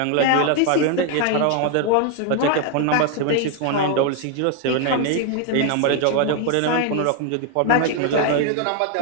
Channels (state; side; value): different; both; correlation 0.00